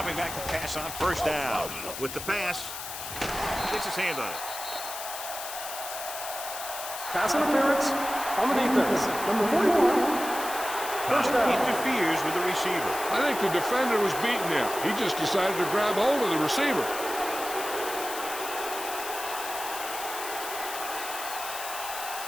back to pass on first down. With the pass, gets his hand on it. Pass interference on the defense. Number 41. First down. Interferes with the receiver. I think the defender was beating him. He just decided to grab hold of the receiver.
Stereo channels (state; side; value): noise; left; hiss, 8 dB below the sound